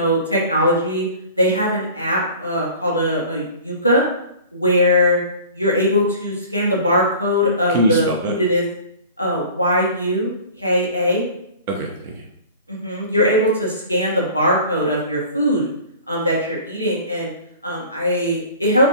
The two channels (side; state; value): both; inverted; correlation -0.43